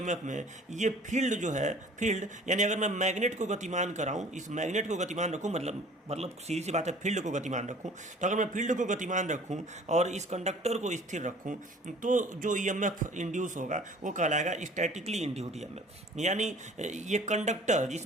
में ये फील्ड जो है, फील्ड यानी अगर मैं मैग्नेट को गतिमान कराऊँ, इस मैग्नेट को गतिमान रखूँ, मतलब सीधी सी बात है, फील्ड को गतिमान रखूँ, तो अगर मैं फील्ड को गतिमान रखूँ और इस कंडक्टर को स्थिर रखूँ, तो जो ईएमएफ इंड्यूस होगा वो कहलाएगा स्टैटिकली इंड्यूस्ड ईएमएफ। यानी ये कंडक्टर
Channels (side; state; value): both; normal; correlation 0.50